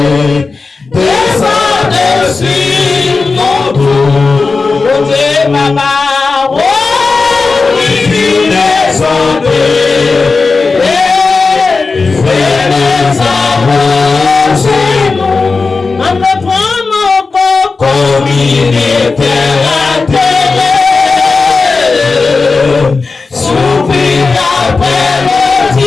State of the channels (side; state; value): right; quieter; 4.2 dB